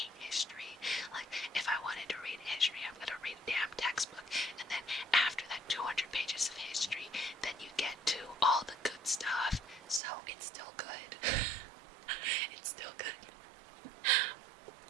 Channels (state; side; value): drops out; left; at 10.0 s